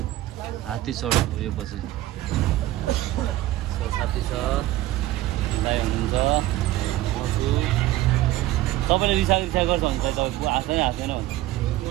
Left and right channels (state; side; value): quieter; left; 15.7 dB